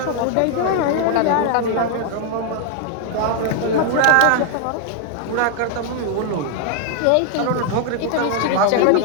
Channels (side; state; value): both; different; correlation 0.00